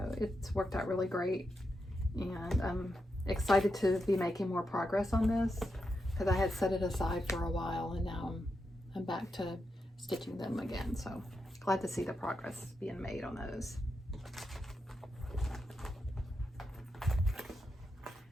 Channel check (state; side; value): normal; both; correlation 0.86